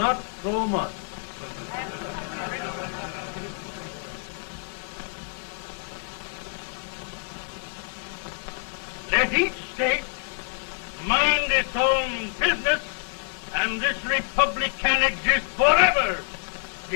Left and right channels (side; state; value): right; silent; 60 dB below the other